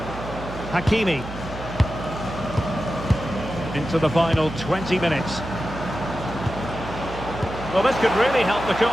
Hakimi. Into the final 20 minutes. Well, this could really help the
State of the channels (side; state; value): right; noise; hum, 11 dB below the sound